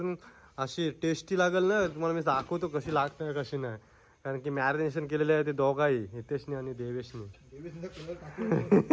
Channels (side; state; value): both; identical; correlation 1.00